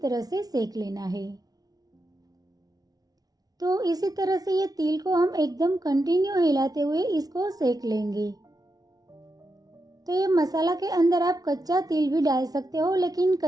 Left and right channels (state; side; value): late; left; 0.18 ms